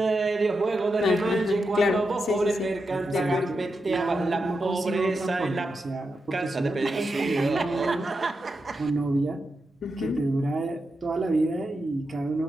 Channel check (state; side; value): normal; both; correlation 0.87